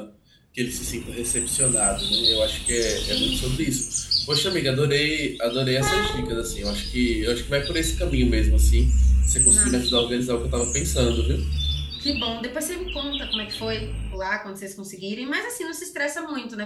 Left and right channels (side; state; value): both; identical; correlation 1.00